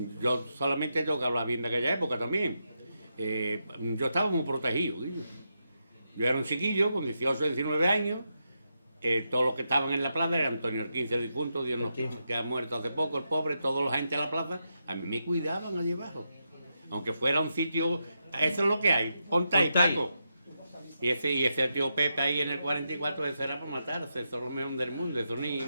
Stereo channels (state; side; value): inverted; both; correlation -0.85